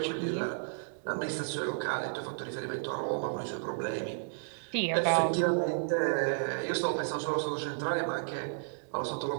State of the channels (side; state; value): left; silent; digital silence